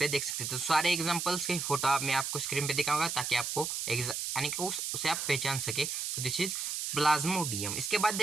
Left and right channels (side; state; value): right; noise; hiss, 3 dB below the sound